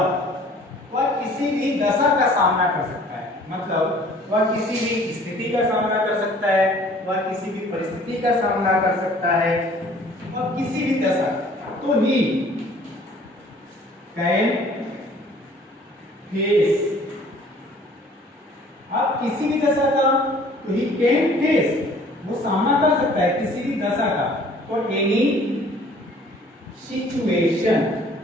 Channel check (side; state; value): both; normal; correlation 0.53